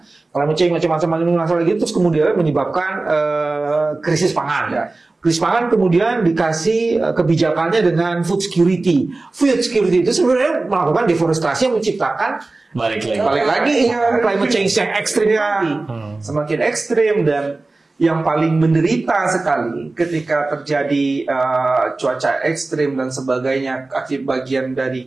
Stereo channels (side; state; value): left; quieter; 3.3 dB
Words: Climate change macam-macam masalah gitu, terus kemudian menyebabkan krisis pangan. Ya. Krisis pangan kemudian dikasih kebijakannya dengan food security. Food security itu sebenarnya melakukan deforestasi yang menciptakan balik lagi climate change yang ekstrim lagi. Semakin ekstrim, dan yang paling menderita sekali ketika terjadi cuaca ekstrim dan sebagainya akibat bagian dari